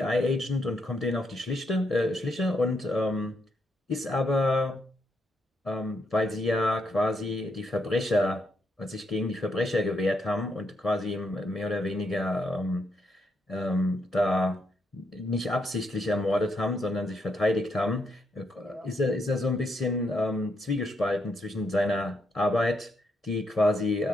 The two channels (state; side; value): normal; both; correlation 0.78